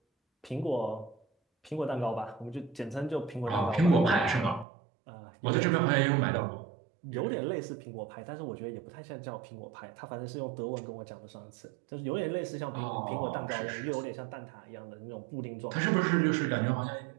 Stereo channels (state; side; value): drops out; left; at 4.7 s